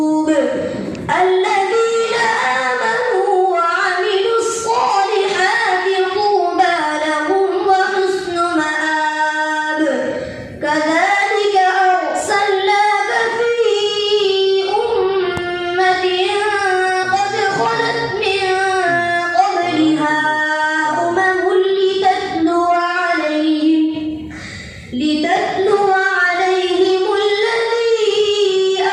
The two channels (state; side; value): identical; both; correlation 1.00